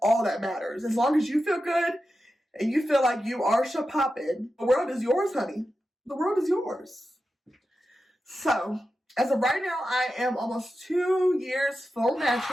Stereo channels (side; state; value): both; normal; correlation 0.91